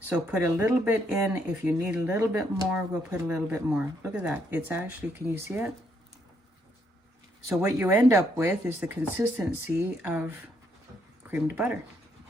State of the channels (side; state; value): both; normal; correlation 0.73